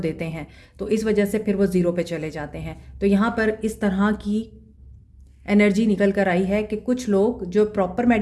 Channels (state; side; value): identical; both; correlation 1.00